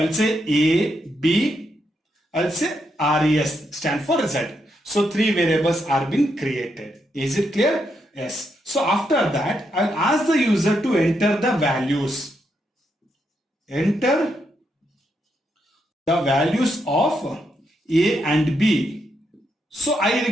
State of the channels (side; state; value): both; normal; correlation 0.80